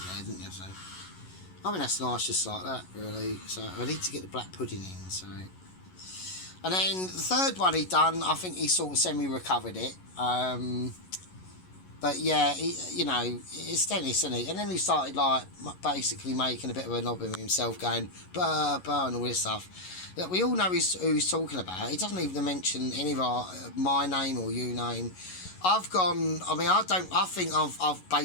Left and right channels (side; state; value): right; late; 11 ms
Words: there, didn't you? So I mean, that's nice just like that, really. So I need to get the black pudding in, so. And then the third one he done, I think he sort of semi-recovered it. But yeah, you know, it's Dennis, isn't he? And then he started, like, basically making a bit of a knob of himself, going, burr, burr, and all this stuff. Yeah, we all know who he's talking about. He doesn't even mention any of my name or you name. I've gone, I mean, I think I've